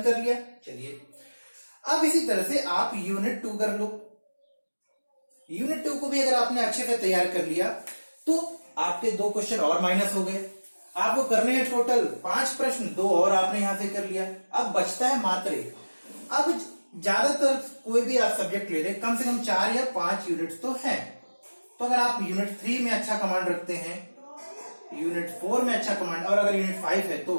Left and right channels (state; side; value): inverted; both; correlation -1.00